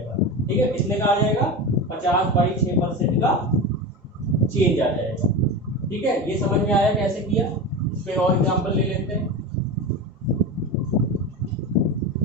ठीक है, कितने का आ जाएगा 50/6% का चेंज आ जाएगा। ठीक है, ये समझ में आया कैसे किया? इस पे और एग्जांपल ले लेते हैं।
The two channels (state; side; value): normal; both; correlation 0.24